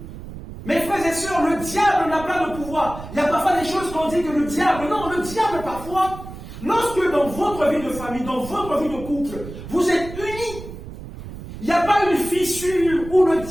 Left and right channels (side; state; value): right; noise; rumble, 12 dB below the sound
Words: mes frères et sœurs, le diable n'a pas de pouvoir. Il y a parfois des choses qu'on dit que le diable, non, le diable parfois, lorsque dans votre vie de famille, dans votre vie de couple, vous êtes unis, il n'y a pas une fissure où le